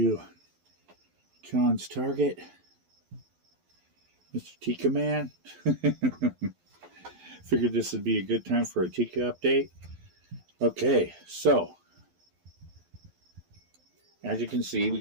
John's target, Mr. Tikka Man. Figured this would be a good time for a Tikka update. Okay, so as you can see, we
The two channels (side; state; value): left; late; 11 ms